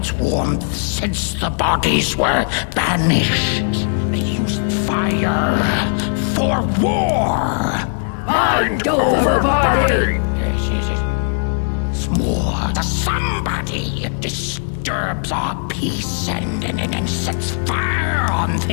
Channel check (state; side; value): silent; right; digital silence